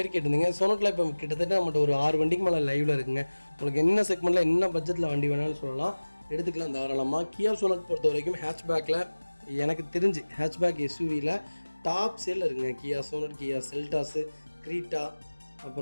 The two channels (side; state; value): both; inverted; correlation -1.00